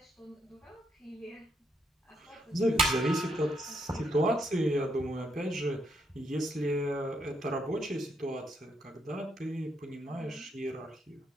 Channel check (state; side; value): normal; both; correlation 0.77